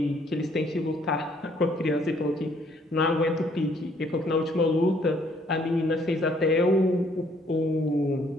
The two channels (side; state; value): both; normal; correlation 0.65